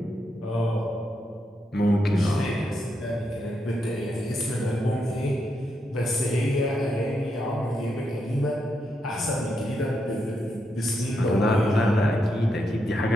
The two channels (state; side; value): normal; both; correlation 0.82